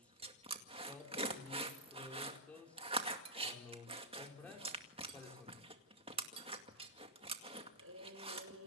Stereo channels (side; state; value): both; normal; correlation -0.09